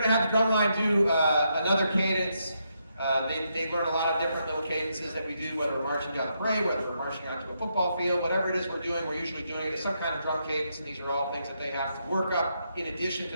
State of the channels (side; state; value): both; inverted; correlation -0.80